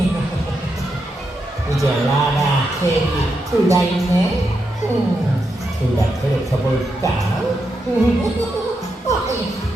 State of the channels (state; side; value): normal; both; correlation 0.84